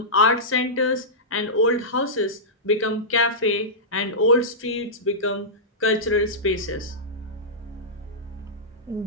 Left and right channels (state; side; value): normal; both; correlation -0.14